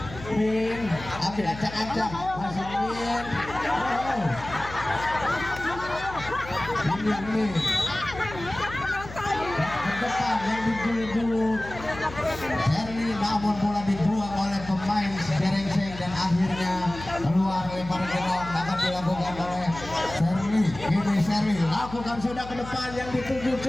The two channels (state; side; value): noise; left; hum, 13 dB below the sound